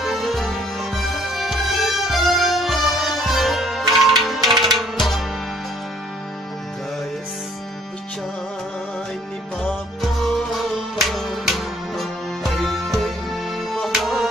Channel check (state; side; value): normal; both; correlation 0.61